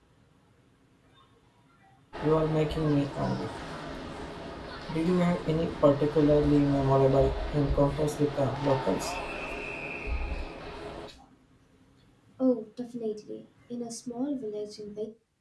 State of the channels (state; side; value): identical; both; correlation 1.00